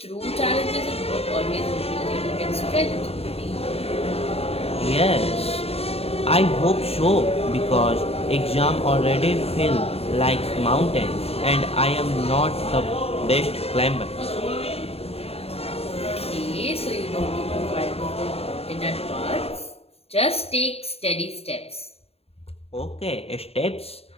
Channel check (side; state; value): right; late; 0.29 ms